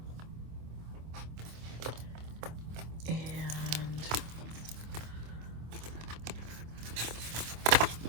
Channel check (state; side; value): late; left; 26 ms